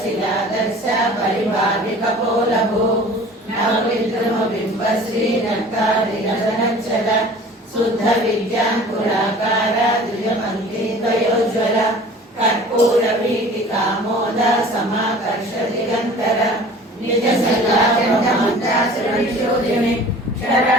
परिभाविकपोलभू नवविद्रुमबिम्बश्रीनक्तादिनदनच्छल शुद्ध विद्याङ्कुराकार द्विजपङ्क्तिद्वयोज्ज्वल कर्पूरवीटिकामोद समाकर्ष दिगन्तर निजसल्लाचण्डमन्त्रासुरनिशोधिनि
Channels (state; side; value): normal; both; correlation 0.45